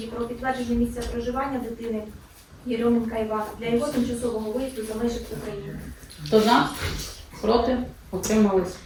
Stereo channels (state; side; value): identical; both; correlation 1.00